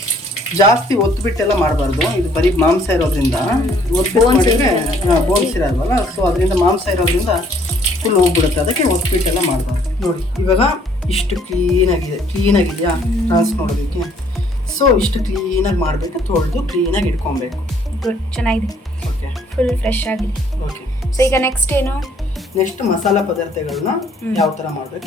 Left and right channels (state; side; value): normal; both; correlation 0.62